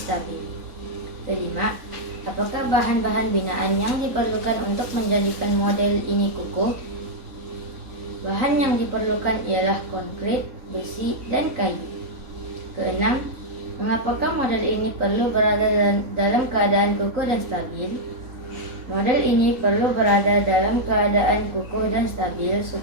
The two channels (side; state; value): left; late; 3.9 ms